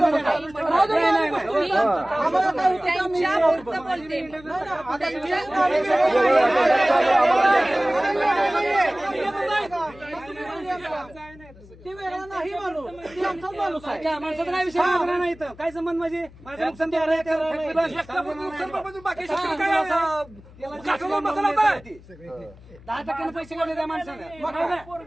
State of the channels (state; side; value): noise; left; hum, 22 dB below the sound